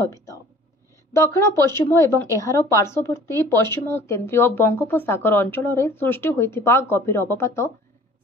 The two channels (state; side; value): normal; both; correlation 0.50